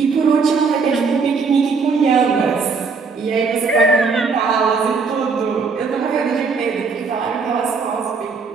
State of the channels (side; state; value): left; quieter; 4.9 dB